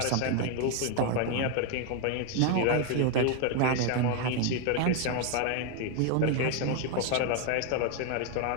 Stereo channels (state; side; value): different; both; correlation 0.01